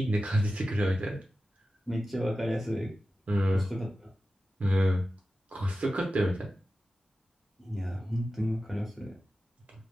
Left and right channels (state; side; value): normal; both; correlation 0.94